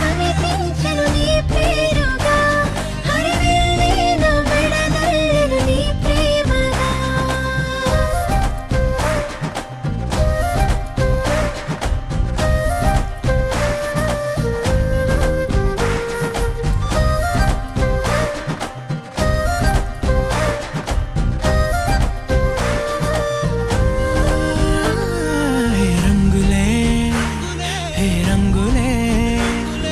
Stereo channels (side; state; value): both; identical; correlation 1.00